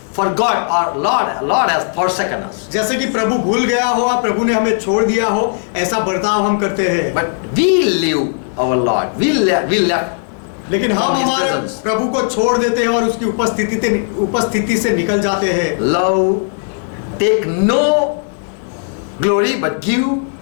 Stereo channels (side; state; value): right; silent; digital silence